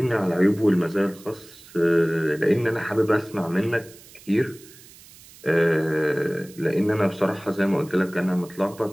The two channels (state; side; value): noise; right; hiss, 22 dB below the sound